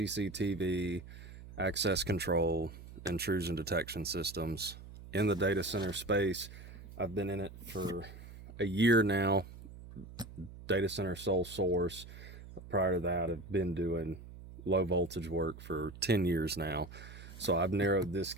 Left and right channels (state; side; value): noise; right; hum, 15 dB below the sound